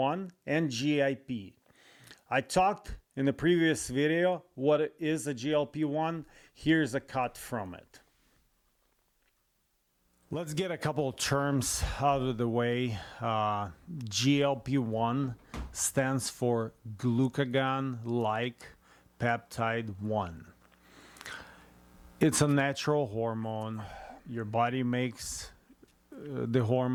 and GIP. I talked in the previous video what is a GLP-1. Here's a cut from it. Let's get a couple of terms out of the way. GLP-1 stands for glucagon-like peptide 1. It's a natural hormone. Your body makes the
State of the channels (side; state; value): both; identical; correlation 1.00